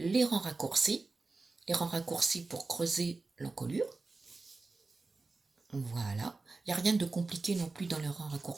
rangs raccourcis. Les rangs raccourcis pour creuser l'encolure. Voilà. Il n'y a rien de compliqué non plus dans les rangs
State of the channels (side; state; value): left; quieter; 3.7 dB